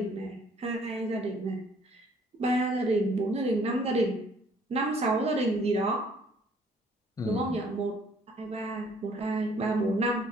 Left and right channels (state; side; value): normal; both; correlation 0.61